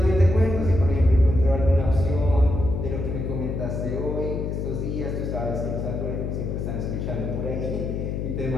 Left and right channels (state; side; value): noise; left; hum, 3 dB below the sound